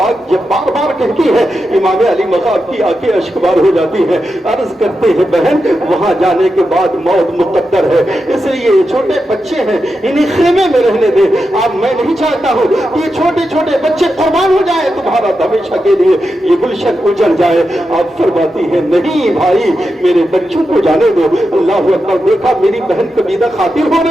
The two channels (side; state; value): both; normal; correlation 0.88